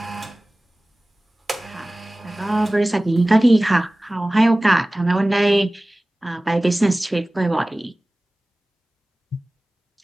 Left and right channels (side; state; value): both; normal; correlation 0.98